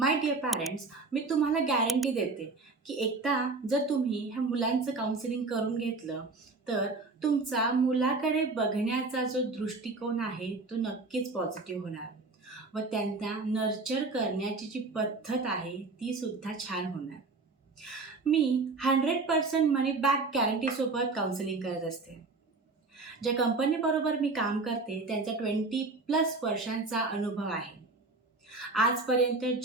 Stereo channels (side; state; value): left; quieter; 3.7 dB